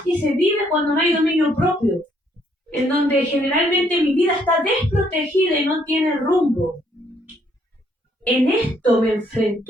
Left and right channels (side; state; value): both; normal; correlation 0.69